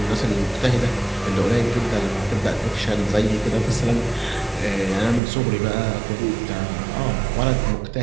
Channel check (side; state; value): left; drops out; at 5.2 s